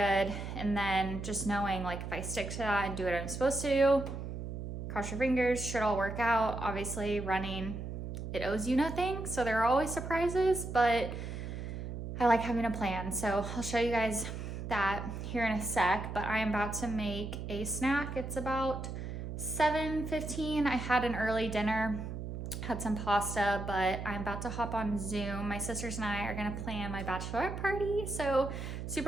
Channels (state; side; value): noise; right; hum, 6 dB below the sound